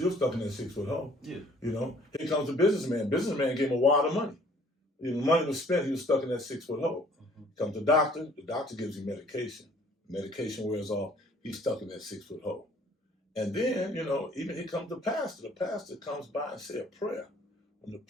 stuck in that 6-foot hole. Here comes a businessman. Businessman gave him a wad of money. The money was spent. He was stuck in that 6-foot hole. Comes the doctor. The doctor gives him medication. Medication wears off. He's stuck in that 6-foot hole. And then, even here comes the pastor. The pastor comes by and say a prayer. When the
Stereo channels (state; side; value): normal; both; correlation 0.57